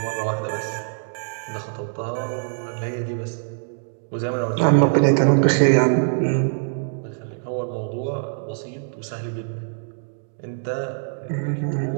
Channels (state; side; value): silent; left; digital silence